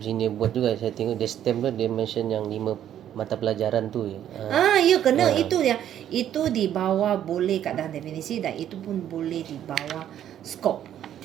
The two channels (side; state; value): left; quieter; 10.7 dB